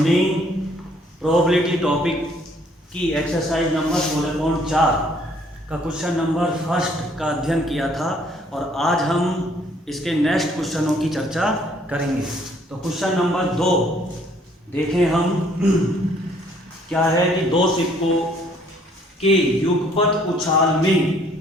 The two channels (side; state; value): both; normal; correlation 0.62